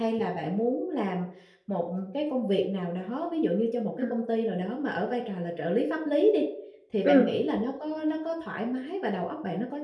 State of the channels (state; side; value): identical; both; correlation 1.00